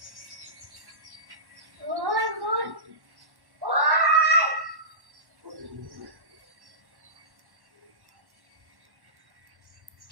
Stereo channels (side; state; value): left; late; 1.1 ms